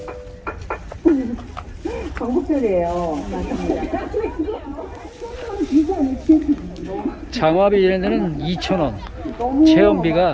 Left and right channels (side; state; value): both; identical; correlation 1.00